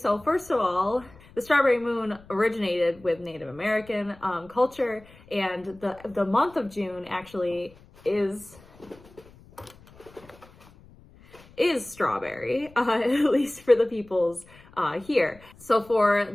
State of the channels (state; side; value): noise; left; rumble, 24 dB below the sound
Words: first of all, the strawberry moon originated with Native American culture, and the month of June actually is strawberry, at least for the peoples here. So for